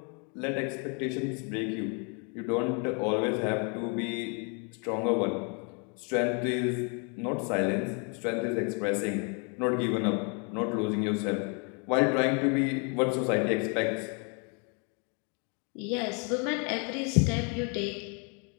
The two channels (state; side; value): quieter; right; 36.3 dB